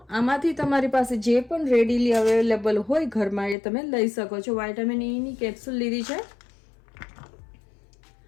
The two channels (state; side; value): drops out; right; at 3.6 s